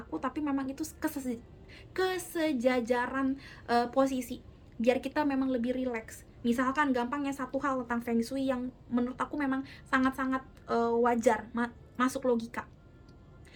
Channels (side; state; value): both; identical; correlation 1.00